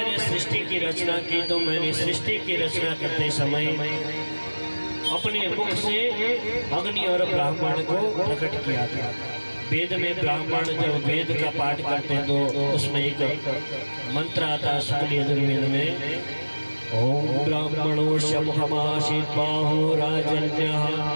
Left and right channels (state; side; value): inverted; both; correlation -1.00